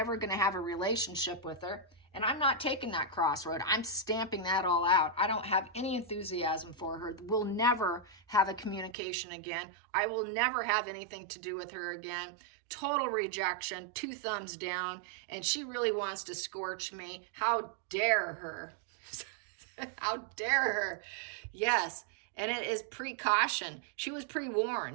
going to have a relationship with her. And I'm not taking that crossroad. I'm stamping that all out. I don't have any enthusiasm for her. We'll never have a communication again. I will never have anything to do with her again. Total rejection, 2 thumbs down. And she really wants to scorch me. How dare her? How dare her? Yes. And it is precaution. She was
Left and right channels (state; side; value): drops out; left; at 9.0 s